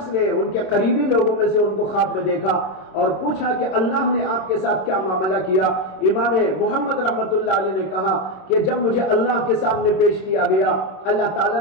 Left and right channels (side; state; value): right; late; 27 ms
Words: نے ان کے قریبی لوگوں میں سے ان کو خواب میں دیکھا اور پوچھا کہ اللہ نے آپ کے ساتھ کیا معاملہ کیا. امام محمد رحمت اللہ علیہ نے کہا کہ جب مجھے اللہ کے سامنے پیش کیا گیا، اللہ تعالیٰ